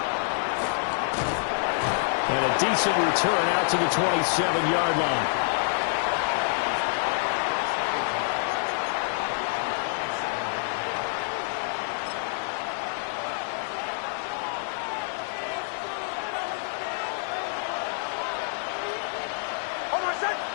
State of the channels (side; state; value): right; silent; 60 dB below the other